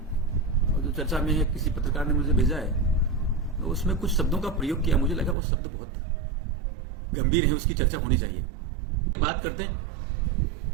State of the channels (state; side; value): drops out; left; at 5.4 s